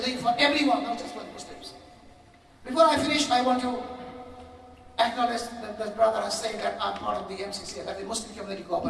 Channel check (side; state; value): both; identical; correlation 1.00